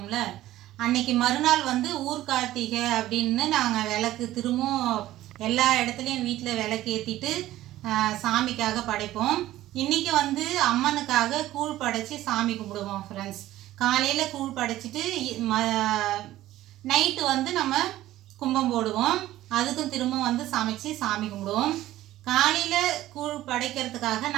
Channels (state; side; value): quieter; left; 14.8 dB